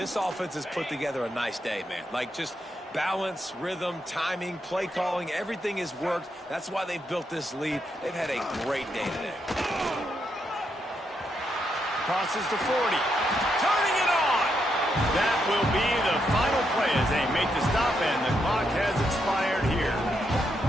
offense has put together a nice day, man. Like just balance, rhythm, timing, play calling. Everything has worked. That's why they've built this lead. They've had a great day today. Crosses the 40. Turning it on. That will be the final play as they make the stop, and the clock has expired here.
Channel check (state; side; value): normal; both; correlation 0.80